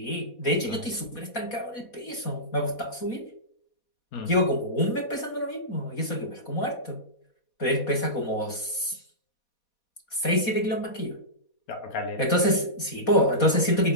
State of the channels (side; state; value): right; late; 4.2 ms